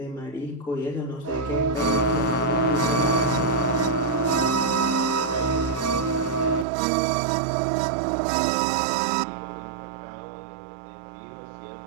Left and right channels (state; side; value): drops out; left; at 6.7 s